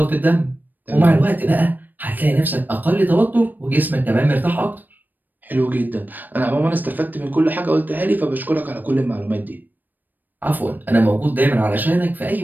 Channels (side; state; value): left; late; 0.089 ms